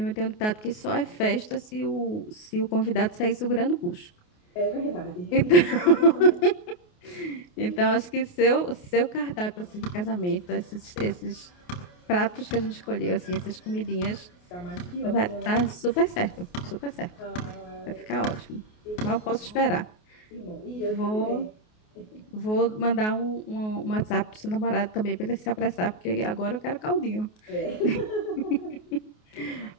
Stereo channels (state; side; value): late; right; 28 ms